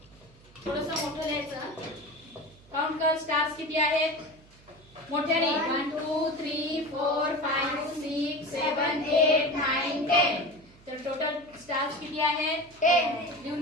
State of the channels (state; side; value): noise; right; hum, 26 dB below the sound